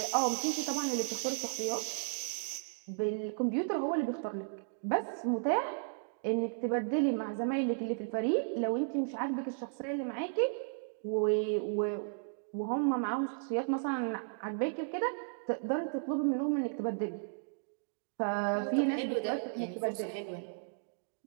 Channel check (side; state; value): left; silent; digital silence